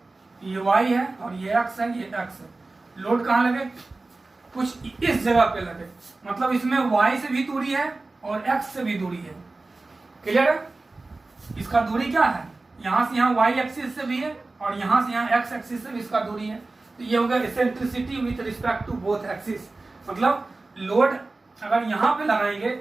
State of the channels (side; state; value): left; quieter; 3.3 dB